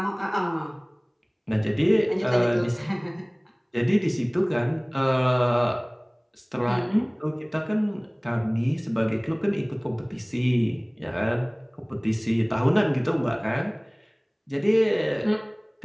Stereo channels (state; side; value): identical; both; correlation 1.00